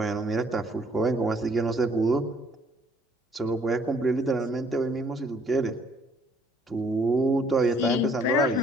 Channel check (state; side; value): normal; both; correlation 0.63